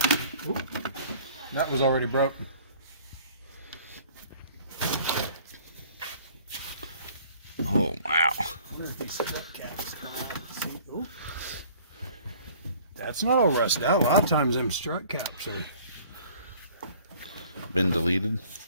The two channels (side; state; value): both; inverted; correlation -0.53